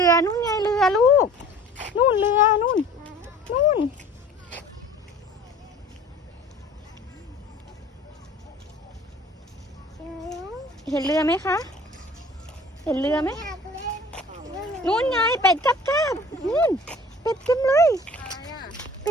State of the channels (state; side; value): normal; both; correlation 0.47